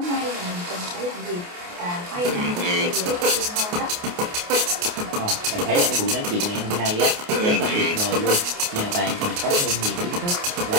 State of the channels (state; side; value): late; left; 28 ms